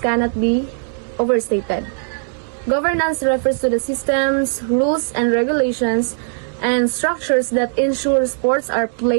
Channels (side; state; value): left; silent; digital silence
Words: be overstated. Governance refers to the systems, rules, and regulations and structures that ensure sports are